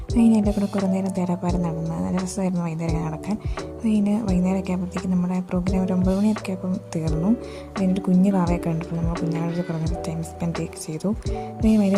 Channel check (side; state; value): both; identical; correlation 1.00